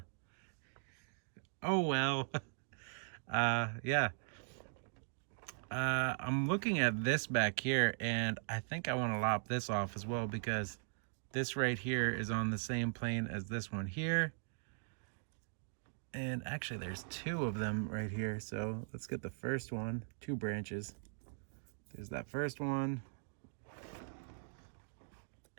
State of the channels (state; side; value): silent; left; digital silence